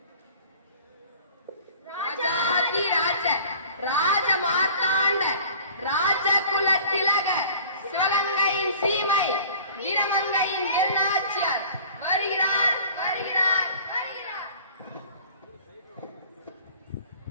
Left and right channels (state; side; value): inverted; both; correlation -0.47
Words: ராஜ மார்த்தாண்ட ராஜகுல திலக சிவகங்கையின் சீமை வீரமங்கையின் எல்நாச்சியார் வருகிறார் வருகிறார் வருகிறார்.